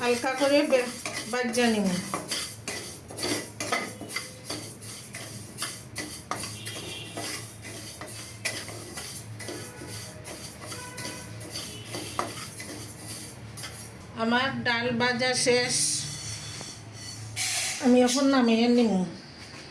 করে ভাজা নিব। আমার ডাল ভাজা শেষ, আমি এখন নামিয়ে নিব।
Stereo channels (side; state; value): both; identical; correlation 1.00